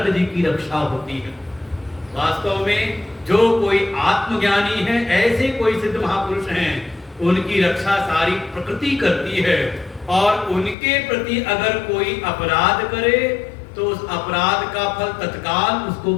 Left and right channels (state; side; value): drops out; right; at 10.8 s